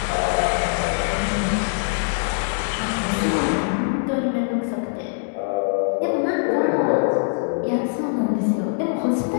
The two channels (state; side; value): silent; right; 64 dB below the other